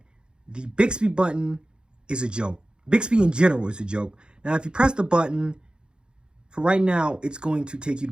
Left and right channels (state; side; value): late; left; 0.049 ms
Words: the Bixby button is a joke. Bixby in general is a joke. Now, if you press the button, for right now, it's going to take you